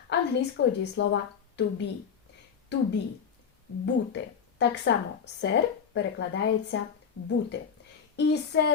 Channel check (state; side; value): quieter; right; 7.0 dB